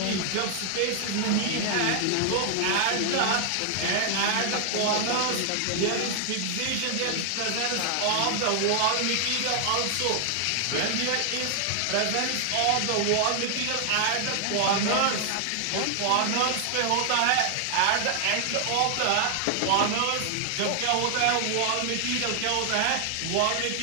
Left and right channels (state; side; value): different; both; correlation 0.00